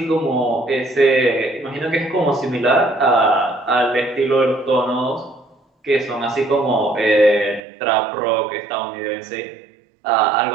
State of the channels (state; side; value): drops out; left; at 7.6 s